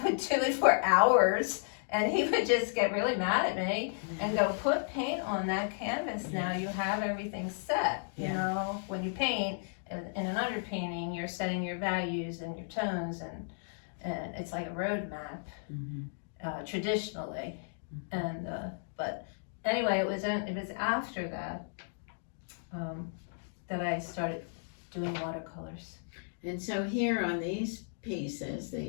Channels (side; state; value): right; silent; digital silence